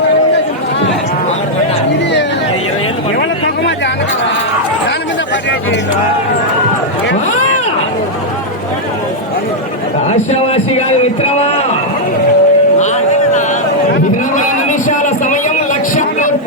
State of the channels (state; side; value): normal; both; correlation -0.04